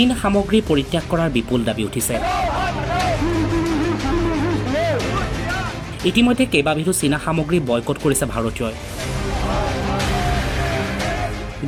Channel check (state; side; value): identical; both; correlation 1.00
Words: সামগ্ৰী পৰিত্যাগ কৰাৰ বিপুল দাবী উঠিছে। ইতিমধ্যে কেইবাবিধো চীনা সামগ্ৰী বয়কট কৰিছে ভাৰতীয়ই।